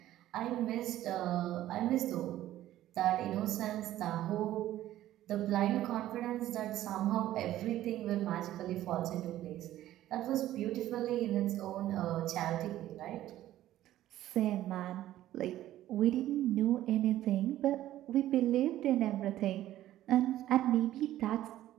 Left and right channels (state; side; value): quieter; left; 13.7 dB